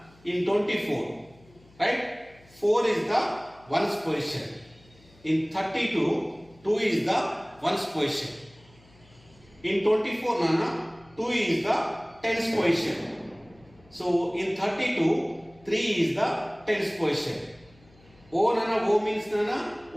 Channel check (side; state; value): left; noise; hum, 28 dB below the sound